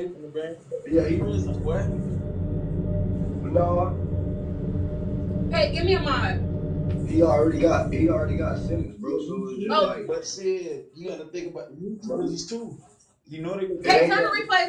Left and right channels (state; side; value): identical; both; correlation 1.00